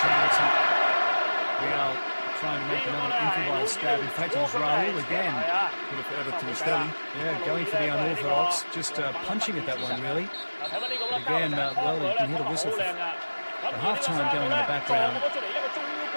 啱啱 trying to make another improvised stab. In fact, it was Raul again. Could have added to Stelly. Yeah, going for the unorthodox, just punching at that one, really. Again, well, you can hear the whistle for the half-time going in the background.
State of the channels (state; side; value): inverted; both; correlation -1.00